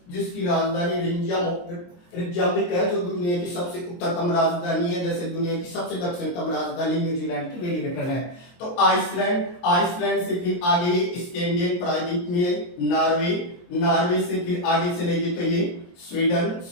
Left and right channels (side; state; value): right; late; 23 ms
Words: जिसकी राजधानी रिकयाविक है, जो दुनिया की सबसे उत्तरतम राजधानी है, जैसे दुनिया की सबसे दक्षिणतम राजधानी न्यूजीलैंड की वेलिंगटन है। तो आइसलैंड से फिर आगे स्कैंडिनेवियन प्रायद्वीप में नॉर्वे से फिर आगे चलेगी तो ये